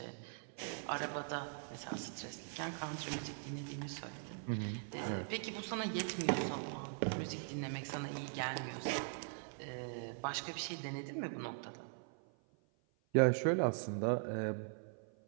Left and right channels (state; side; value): silent; left; 50 dB below the other